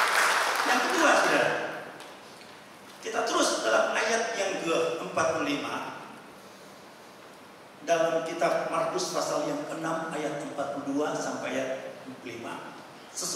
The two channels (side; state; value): both; identical; correlation 1.00